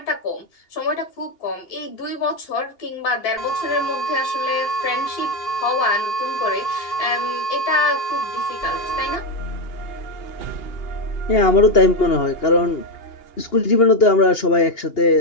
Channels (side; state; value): right; late; 2.8 ms